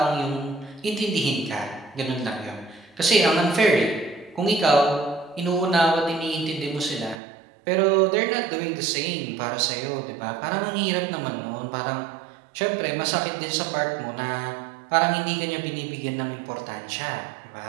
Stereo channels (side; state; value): left; drops out; at 7.2 s